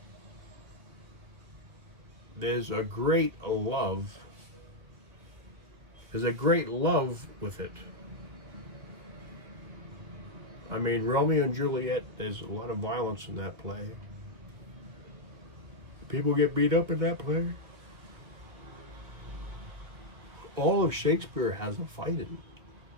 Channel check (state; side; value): late; left; 1.8 ms